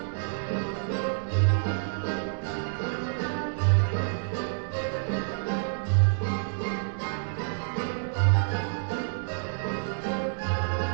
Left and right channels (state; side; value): silent; left; digital silence